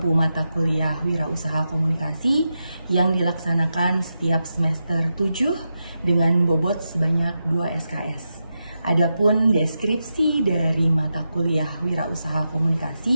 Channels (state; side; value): inverted; both; correlation -0.88